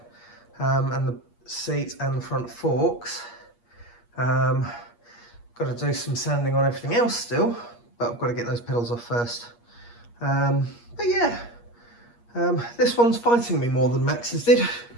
and the seat and the front forks. Got to do some sanding on everything else still, but I've got to get those pedals off first. But yeah, this one's fighting me more than Max's did.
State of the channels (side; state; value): right; late; 8.5 ms